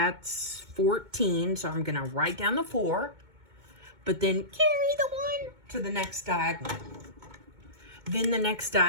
14. So I'm going to write down the 4. But then carry the 1 to the next diagonal. Then the next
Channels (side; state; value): left; late; 2.2 ms